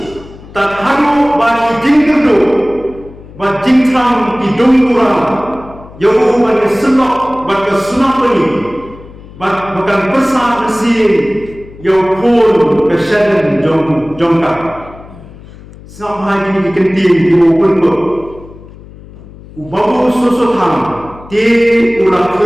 tak haru bagi jingkerdo bat jingtram di dongura yau bagi senok bagi sunapani bat bukan besar mesin yau pun kesadaran jongka sampai ini kenting di open book ubabu susutham ti ulah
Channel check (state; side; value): noise; left; hum, 19 dB below the sound